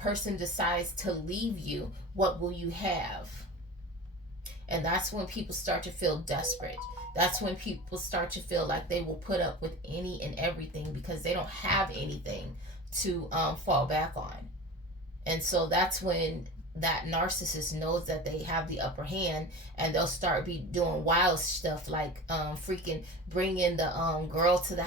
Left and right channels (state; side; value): normal; both; correlation 0.33